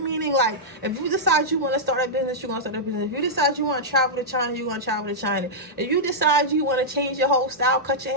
meaning like if you decide you want to start a business, you're going to start a business. If you decide you want to travel to China, you're going to travel to China. If you decide you want to change your whole style, cut your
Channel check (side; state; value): both; normal; correlation -0.09